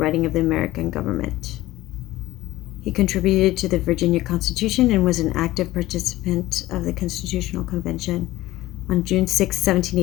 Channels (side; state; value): right; quieter; 16.8 dB